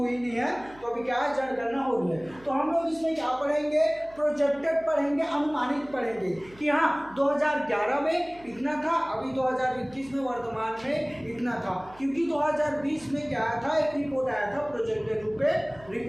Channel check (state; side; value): noise; right; hum, 24 dB below the sound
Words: नहीं है, तो अभी क्या है, जनगणना हो रही है। तो हम लोग इसमें क्या पढ़ेंगे, प्रोजेक्टेड पढ़ेंगे, अनुमानित पढ़ेंगे कि हाँ 2011 में इतना था, अभी 2021 में वर्तमान में इतना था। क्योंकि 2020 में क्या आया था, एक रिपोर्ट आया था, प्रोजेक्टेड रूप में